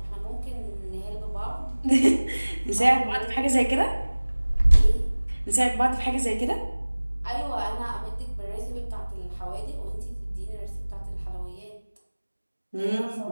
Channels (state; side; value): inverted; both; correlation -1.00